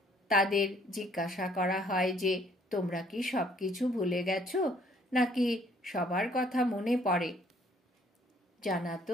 তাদের জিজ্ঞাসা করা হয় যে তোমরা কি সব কিছু ভুলে গেছো নাকি সবার কথা মনে পড়ে? জানা তো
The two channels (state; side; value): normal; both; correlation 0.62